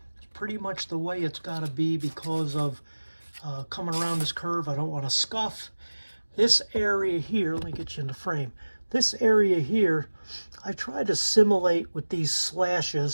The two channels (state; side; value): inverted; both; correlation -1.00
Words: pretty much the way it's got to be because of coming around this curve. I don't want to scuff. This area here, let me get you in the frame. This area here, I try to simulate with these